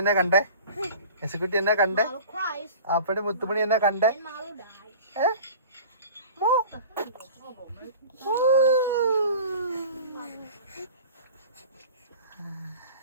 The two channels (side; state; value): both; inverted; correlation -0.40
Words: കണ്ടേ, എസുക്കുട്ടി എന്നെ കണ്ടേ, അപ്പടി മുത്തുമണി എന്നെ കണ്ടേ.